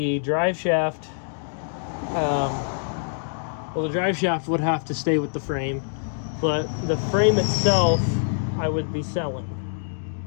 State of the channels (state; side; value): silent; right; digital silence